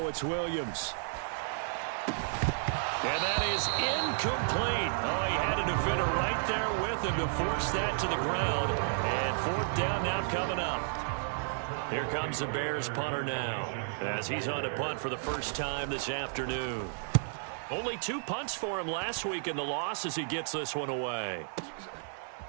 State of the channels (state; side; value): silent; left; 56 dB below the other